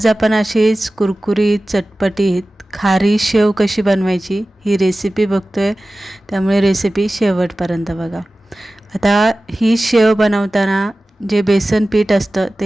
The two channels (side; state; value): both; normal; correlation 0.96